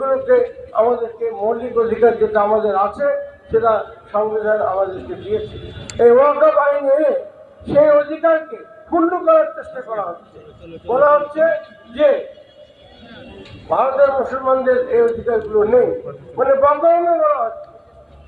আমাদেরকে মৌলিক অধিকার যেটা আমাদের আছে সেটা সংবিধান আমাদেরকে দিয়েছে। এই ওয়াকফ আইন এনে সেই অধিকারকে ক্ষুণ্ণ করার চেষ্টা করা হচ্ছে। বলা হচ্ছে যে ভারতের মুসলমানদের এই অধিকারগুলো নেই, মানে বদনামে বলা হচ্ছে।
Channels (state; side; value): identical; both; correlation 1.00